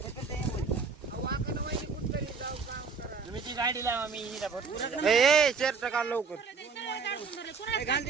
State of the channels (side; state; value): left; quieter; 5.1 dB